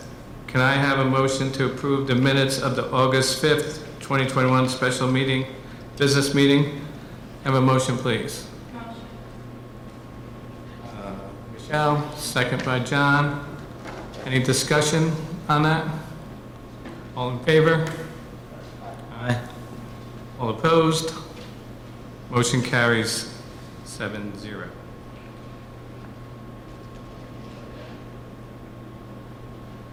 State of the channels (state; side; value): identical; both; correlation 1.00